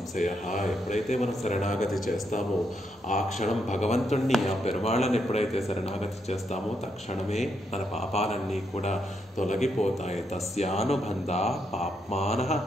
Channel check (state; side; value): normal; both; correlation 0.79